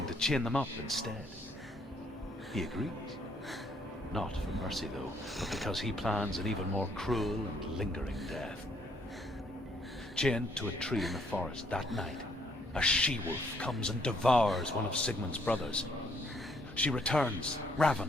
to chain them up instead. He agrees. Not for mercy, though, but because he plans an even more cruel and lingering death. Chained to a tree in the forest that night, a she-wolf comes and devours one of Sigmund's brothers. She returns,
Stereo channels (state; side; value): normal; both; correlation 0.69